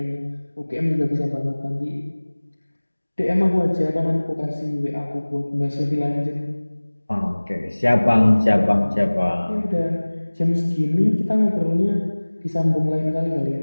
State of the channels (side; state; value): both; inverted; correlation -1.00